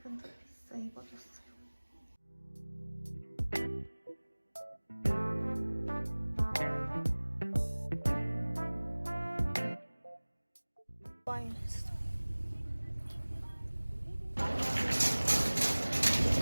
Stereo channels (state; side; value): inverted; both; correlation -1.00